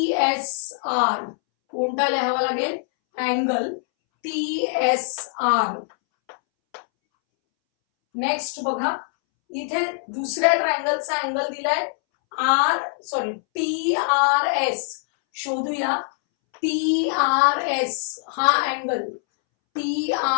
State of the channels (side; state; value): right; silent; 63 dB below the other